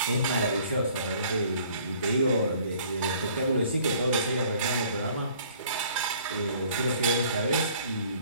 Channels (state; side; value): inverted; both; correlation -0.56